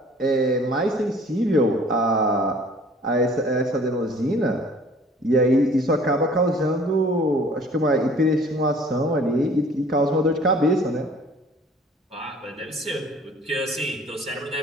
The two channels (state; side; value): normal; both; correlation 0.52